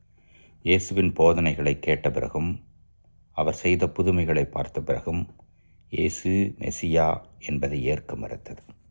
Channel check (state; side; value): inverted; both; correlation -1.00